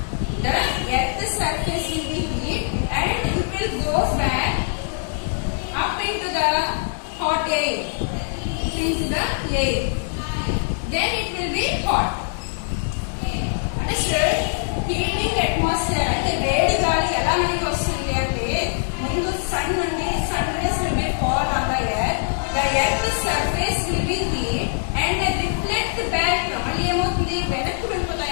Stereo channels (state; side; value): silent; right; digital silence